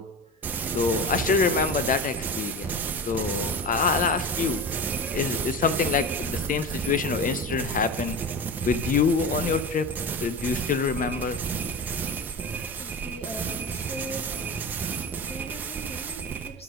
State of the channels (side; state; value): both; normal; correlation 0.28